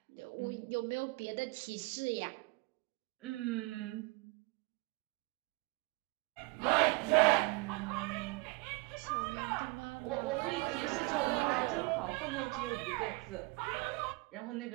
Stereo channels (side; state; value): left; quieter; 26.6 dB